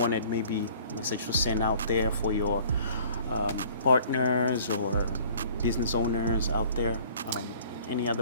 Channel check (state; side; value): inverted; both; correlation -0.52